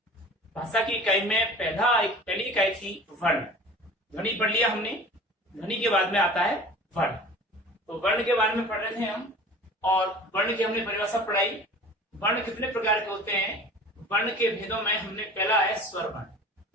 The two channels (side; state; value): both; normal; correlation 0.41